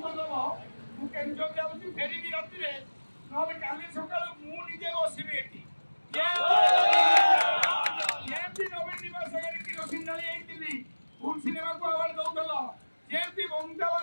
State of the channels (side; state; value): both; inverted; correlation -1.00